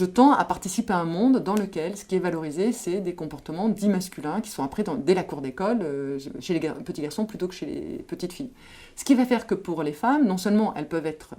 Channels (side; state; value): both; identical; correlation 1.00